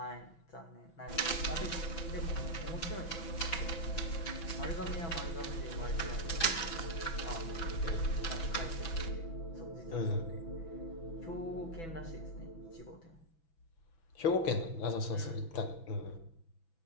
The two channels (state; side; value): late; right; 6.0 ms